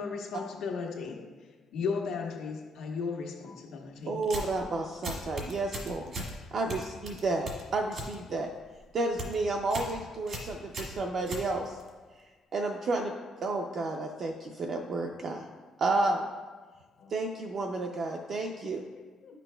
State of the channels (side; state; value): both; normal; correlation 0.71